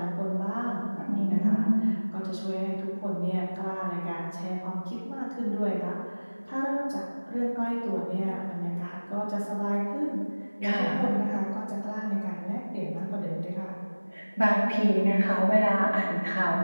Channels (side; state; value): both; inverted; correlation -1.00